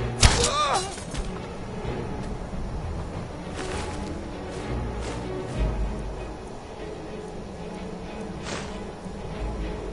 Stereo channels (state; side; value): identical; both; correlation 1.00